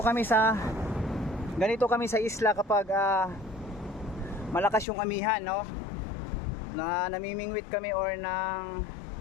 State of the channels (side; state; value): right; drops out; at 4.9 s